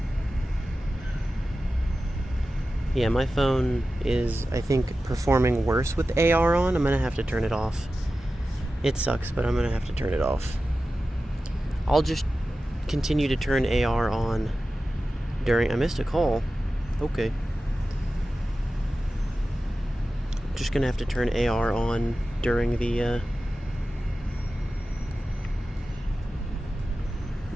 Yeah, my phone is, I think, performing worse with AR on. I'm gonna have to turn it off. It sucks, but I'm gonna have to turn it off. I'll just continue to turn AR on during... I missed a call. Okay. I'm just gonna have to turn AR on during the,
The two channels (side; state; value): both; normal; correlation 0.94